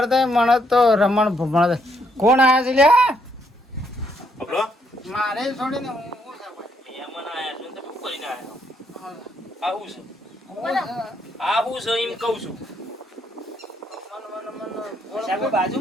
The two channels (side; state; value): both; normal; correlation 0.73